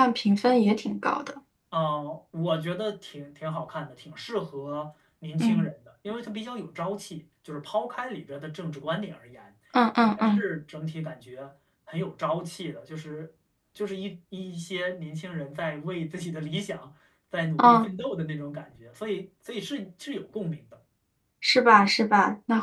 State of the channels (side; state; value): both; identical; correlation 1.00